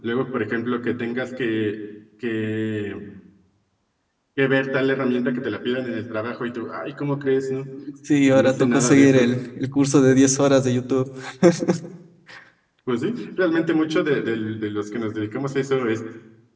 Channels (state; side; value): identical; both; correlation 1.00